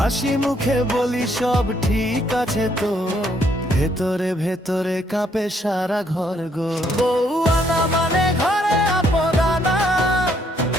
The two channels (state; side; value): normal; both; correlation 0.70